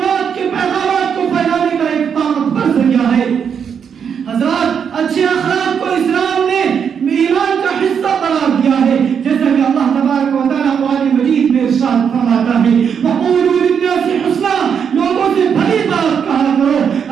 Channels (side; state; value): left; quieter; 7.3 dB